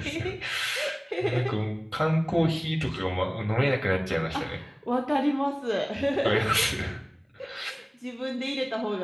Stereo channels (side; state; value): both; identical; correlation 1.00